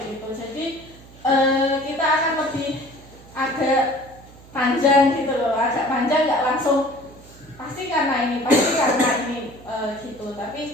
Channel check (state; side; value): noise; right; hum, 22 dB below the sound